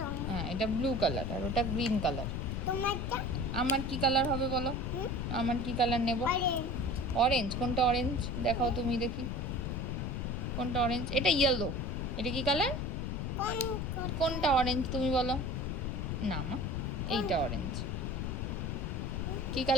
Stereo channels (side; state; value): left; noise; rumble, 2 dB below the sound